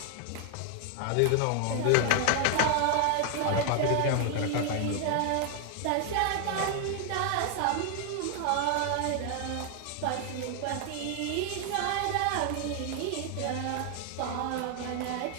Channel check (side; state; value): both; different; correlation 0.00